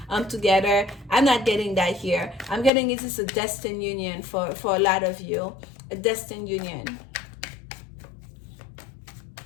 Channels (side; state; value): right; drops out; at 2.7 s